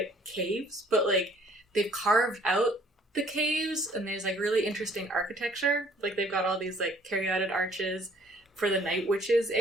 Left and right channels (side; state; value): both; normal; correlation 0.59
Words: caves, but like they've carved out the caves, and there's like really interesting architecture. Like they've got all these like caryatid arches for the Night Witches